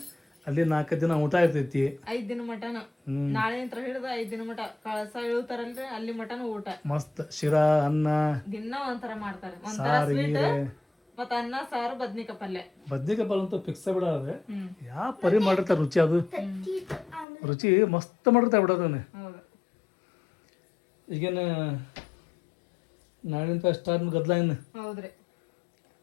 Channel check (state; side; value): drops out; right; at 17.2 s